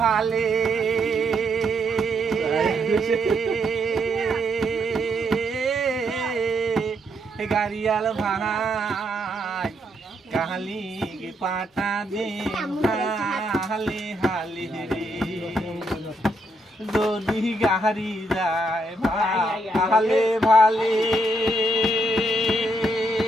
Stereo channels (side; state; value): both; normal; correlation 0.77